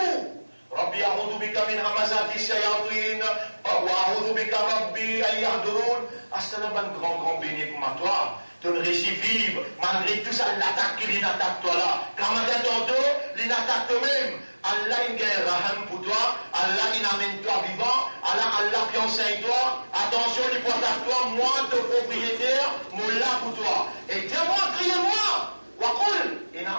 Rabbi a'udhu bika min hamazati shayatin, wa a'udhu bika Rabbi an yahdurun. Ah, c'est un grand béni pour toi. Tu ne réussis vivre, malgré tout ça, l'attaque qui attaque toi là. Quand matin tantôt, il attaque toi-même. Allah il gagne raham pour toi, Allah il amène toi vivant, Allah qui enseigne toi, attention, il porte à toi, moi, ton propriétaire, mon là pour toi. Et dis-moi, criez-moi,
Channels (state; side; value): inverted; both; correlation -1.00